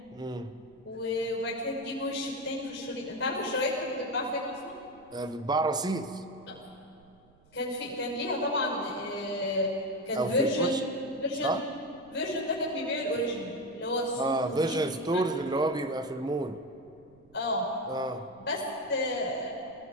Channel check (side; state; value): right; noise; rumble, 29 dB below the sound